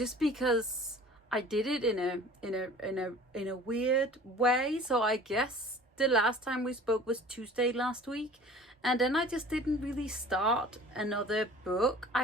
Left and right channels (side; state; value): both; normal; correlation 0.45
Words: because I did it in a weird way. So I guess the last time we spoke was Tuesday last week, and then I just didn't really start another book,